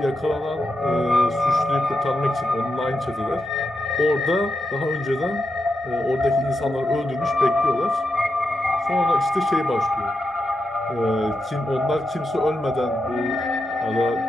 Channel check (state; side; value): normal; both; correlation 0.86